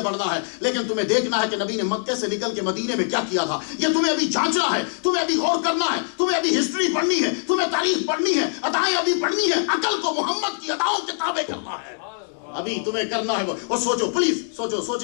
بڑھنا ہے۔ لیکن تمہیں دیکھنا ہے کہ نبی نے مکے سے نکل کے مدینے میں کیا کیا تھا، یہ تمہیں ابھی جانچنا ہے، تمہیں ابھی غور کرنا ہے، تمہیں ابھی ہسٹری پڑھنی ہے، تمہیں تاریخ پڑھنی ہے، ادائیں ابھی پڑھنی ہے، عقل کو محمد کی اداؤں کے تابع کرنا ہے، ابھی تمہیں کرنا ہے۔ اور سوچو، پلیز سوچو،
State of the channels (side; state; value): right; silent; digital silence